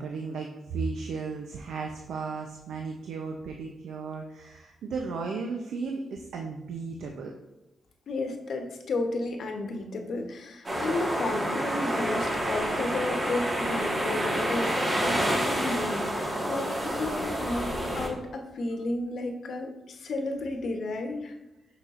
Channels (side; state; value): both; normal; correlation 0.83